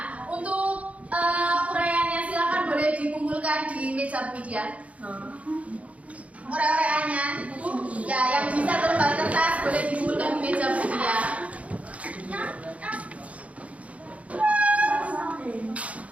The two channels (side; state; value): left; late; 0.066 ms